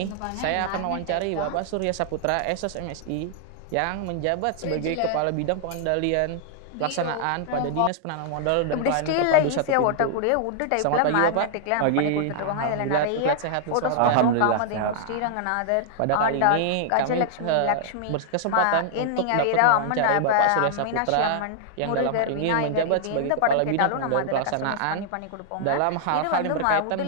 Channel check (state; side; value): different; both; correlation -0.01